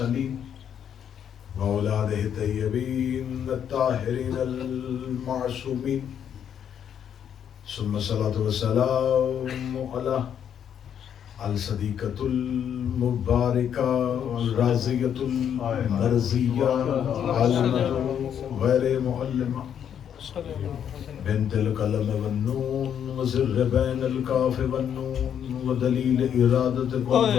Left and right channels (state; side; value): quieter; right; 8.9 dB